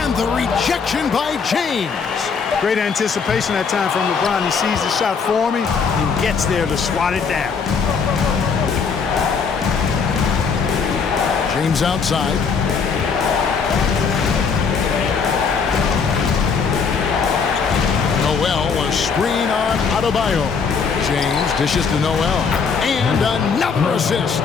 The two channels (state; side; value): quieter; right; 5.7 dB